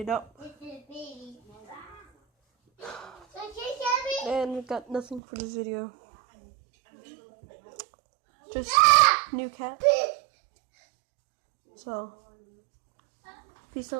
up. And we got nothing for this video. Just new cat. So, peace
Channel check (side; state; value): left; drops out; at 5.2 s